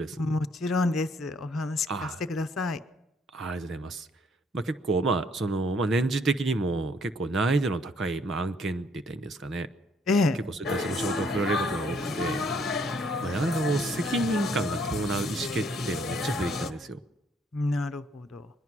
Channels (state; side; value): normal; both; correlation 0.66